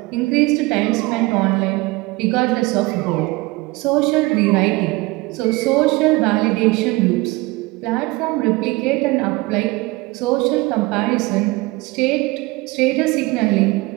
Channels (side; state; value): left; quieter; 22.3 dB